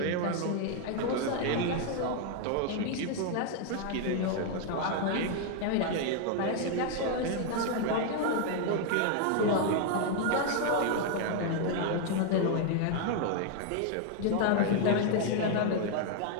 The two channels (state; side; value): different; both; correlation 0.00